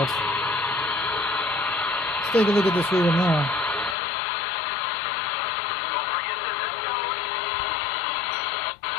Let's take a look at this river now.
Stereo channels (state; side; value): drops out; right; at 4.0 s